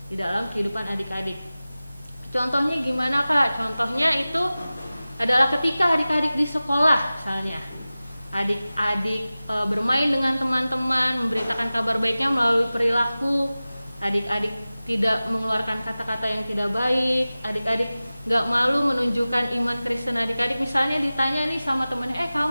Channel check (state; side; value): inverted; both; correlation -0.97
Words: di dalam kehidupan adik-adik. Contohnya gimana Kak? Contohnya itu adalah ketika adik-adik di sekolah misalnya. Adik-adik bermain dengan teman-teman, memberitakan kabar baiknya melalui perilaku. Adik-adik tidak mengeluarkan kata-kata yang tidak baik. Adik-adik gak malu menunjukkan iman Kristen adik-adik. Misalnya ditanya nih sama temennya,